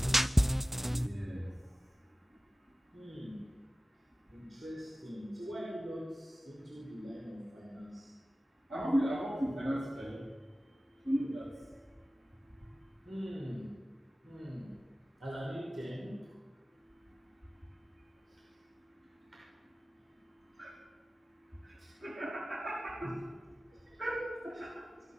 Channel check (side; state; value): both; normal; correlation 0.96